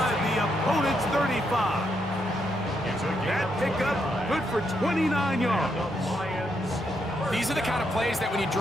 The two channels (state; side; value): normal; both; correlation 0.79